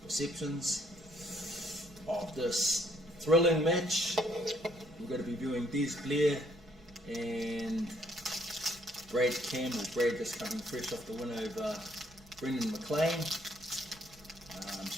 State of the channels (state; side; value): normal; both; correlation 0.67